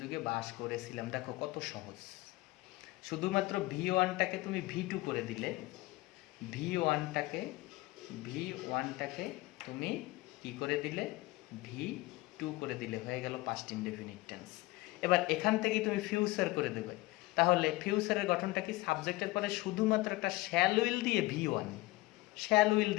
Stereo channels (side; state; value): right; quieter; 20.3 dB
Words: যুগে বাস করেছিলাম। দেখো কত সহজ, শুধুমাত্র V1টাকে তুমি V2 করে দিলে, V1টাকে তুমি কি করে দিলে, V2 করে দিলে, হয়ে গেল পাস্ট ইনডেফিনিট টেন্স। এবার এখান থেকেই তুমি ফিউচার করে দেবে, তাহলে ফিউচারের গঠনটা কি, সাবজেক্টের পরে শুধুমাত্র একটা শ্যাল উইল দিয়ে